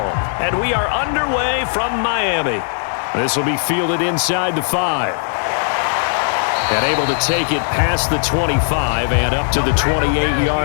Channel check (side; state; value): right; silent; digital silence